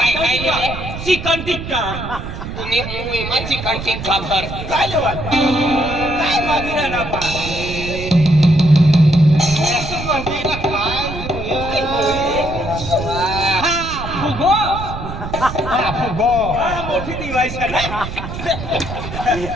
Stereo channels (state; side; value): noise; right; rumble, 8 dB below the sound